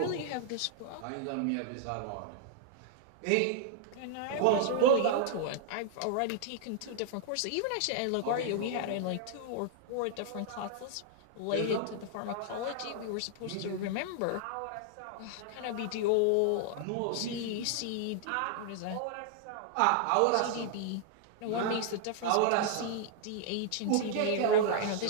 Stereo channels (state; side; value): different; both; correlation -0.01